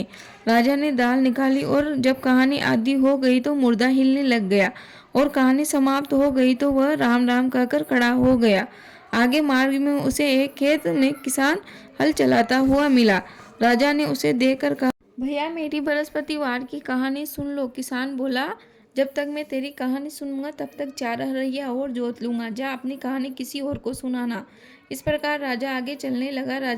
राजा ने दाल निकाली और जब कहानी आधी हो गई तो मुर्दा हिलने लग गया और कहानी समाप्त हो गई तो वह राम राम कहकर खड़ा हो गया। आगे मार्ग में उसे एक खेत में किसान हल चलाता हुआ मिला। राजा ने उसे देखकर कहा, भैया, मेरी बृहस्पतिवार की कहानी सुन लो। किसान बोला, जब तक मैं तेरी कहानी सुनूंगा तब तक 4 हरैया और जोत लूंगा। जा, अपनी कहानी किसी और को सुनाना। इस प्रकार राजा आगे चलने लगा।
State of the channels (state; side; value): identical; both; correlation 1.00